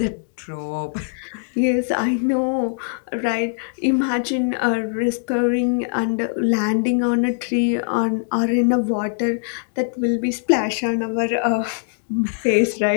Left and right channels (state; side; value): silent; right; digital silence